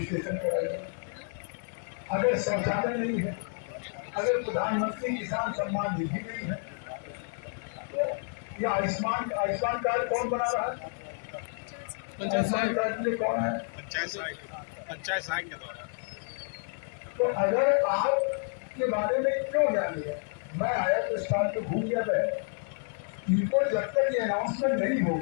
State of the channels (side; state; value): right; silent; 58 dB below the other